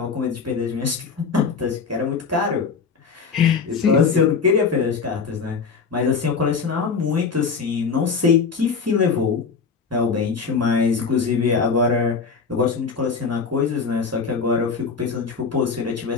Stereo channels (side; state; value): right; quieter; 5.4 dB